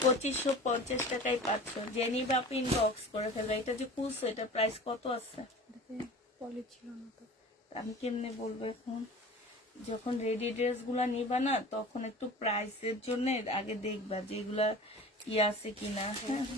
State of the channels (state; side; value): normal; both; correlation 0.39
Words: 2550 টাকায় পাচ্ছ। জেনি বাপ ইনবক্স করে ফেলবে। এটা যে খুলছো, এটা প্রাইস কত আছে পলি ছিল না তো। আমি কেমনে বলবো এখন? যখন রেডি ড্রেস গুলা নিবা না, তখন একটু প্রাইসের জন্য আগে দেখবা যেগুলা আছে কিনা, হ্যাঁ।